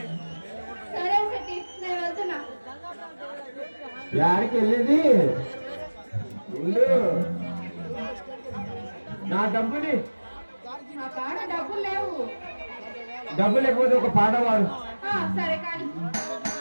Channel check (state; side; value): inverted; both; correlation -1.00